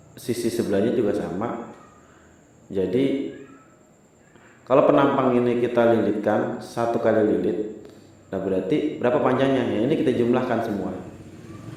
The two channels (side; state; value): both; identical; correlation 1.00